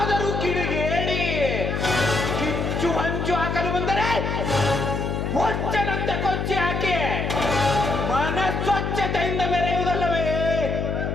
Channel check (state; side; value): noise; left; hum, 1 dB below the sound